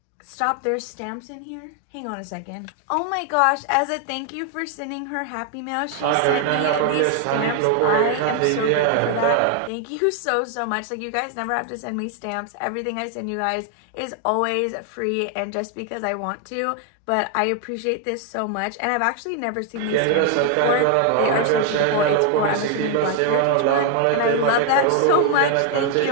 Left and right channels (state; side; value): different; both; correlation 0.00